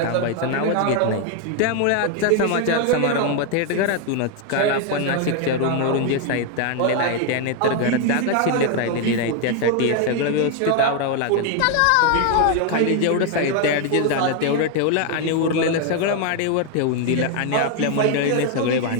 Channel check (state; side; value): different; both; correlation 0.01